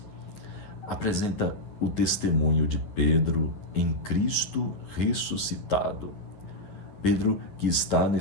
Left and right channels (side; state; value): right; late; 9.6 ms